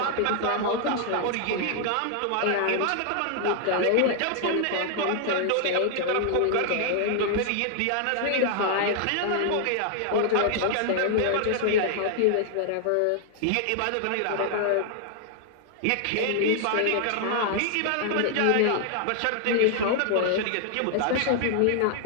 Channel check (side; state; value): both; different; correlation 0.00